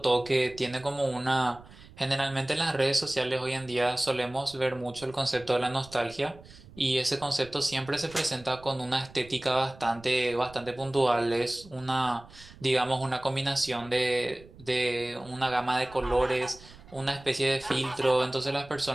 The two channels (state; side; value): noise; right; rumble, 21 dB below the sound